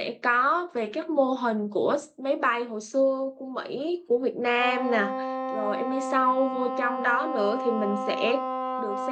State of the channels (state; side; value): identical; both; correlation 1.00